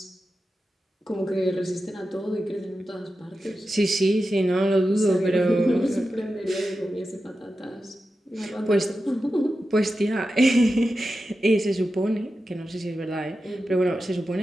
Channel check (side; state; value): both; normal; correlation 0.92